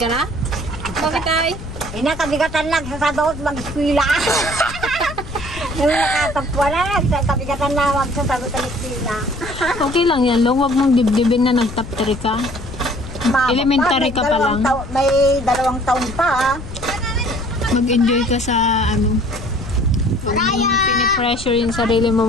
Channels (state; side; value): noise; left; rumble, 12 dB below the sound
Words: na? Bakit ay? Kabigatan lang sa sabaot mag-eskwila. Yung nakatapwa na, kabigatan na magsasagot ang eskwila. Okay lang yan, Long. Huwag mong dibdibin na nag-top 3 ka. Elementary ka pa lang. May 2 taon pa. Mag-enjoy ka sa pinipressure yung sarili mo